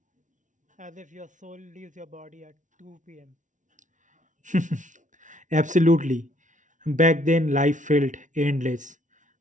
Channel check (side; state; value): left; late; 0.37 ms